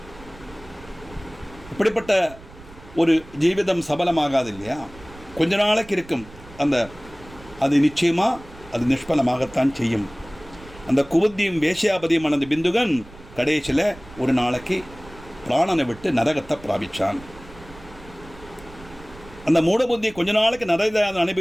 இப்படிப்பட்ட ஒரு ஜீவிதம் சபலமாகாது இல்லையா, கொஞ்ச நாளைக்கு இருக்கும். அது நிச்சயமாக அது நிஷ்பலமாகத்தான் செய்யும். அந்த குபுத்தியும் வேஷ்யாபதியுமான அந்த பிந்துகன் கடைசியில் ஒரு நாளைக்கு பிராணனை விட்டு நரகத்தை பிராபிச்சான். அந்த மூடபுத்தி கொஞ்ச நாளைக்கு நரகத்தை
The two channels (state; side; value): noise; right; rumble, 20 dB below the sound